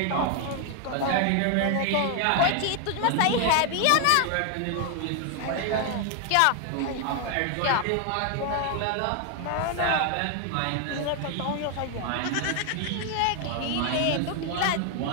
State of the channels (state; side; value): different; both; correlation 0.00